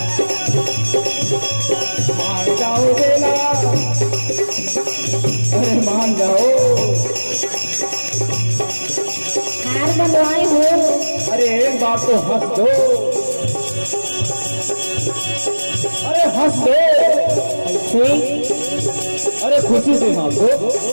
मान जाओ बेला, अरे मान जाओ। हार बनवाई हो। अरे एक बार तो हंस दो, अरे हंस दो, अरे खुशी से हंस दो।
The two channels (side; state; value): both; inverted; correlation -1.00